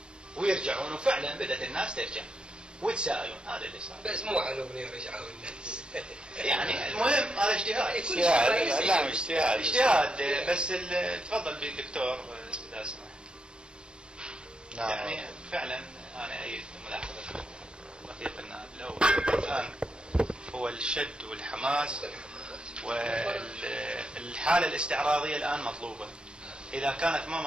ويرجعون، وفعلا بدأت الناس ترجع ويتساءلون. هذا اللي صار. بس مو على أغنية رجعوا الناس. يعني المهم هذا اجتهاد. اجتهاد بس تفضل بالدكتور إذا سمحت. نعم. يعني فعلا أنا أيد ملاحظة رفيق النائب الأول الآن هو الشد والحماس والحالة الاستعراضية الآن مطلوبة. إذا كانت ما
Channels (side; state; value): left; late; 0.051 ms